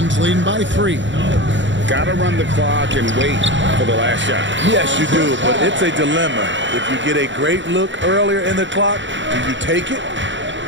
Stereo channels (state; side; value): late; left; 0.54 ms